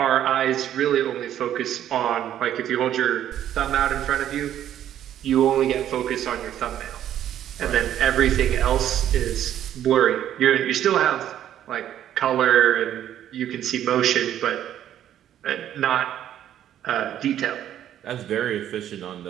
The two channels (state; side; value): quieter; left; 11.0 dB